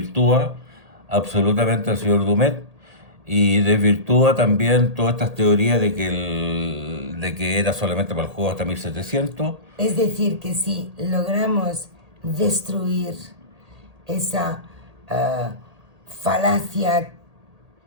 absolutamente al señor Dumet y desvirtúa también todas estas teorías de que era solamente para el juego hasta 1700. Es decir, que si logramos destruir esa falacia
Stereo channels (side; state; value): left; late; 1.8 ms